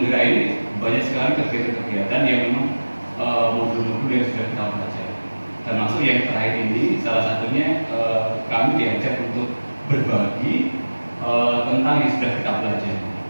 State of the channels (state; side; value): inverted; both; correlation -1.00